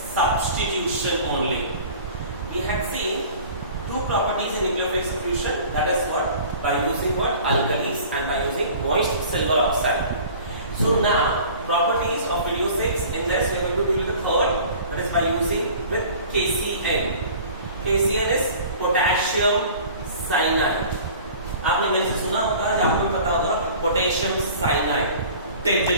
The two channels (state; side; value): inverted; both; correlation -0.45